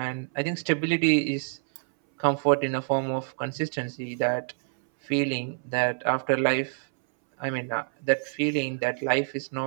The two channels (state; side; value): silent; left; 60 dB below the other